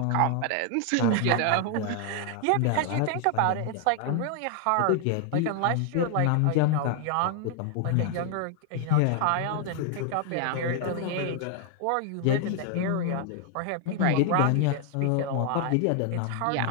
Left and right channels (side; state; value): both; different; correlation 0.00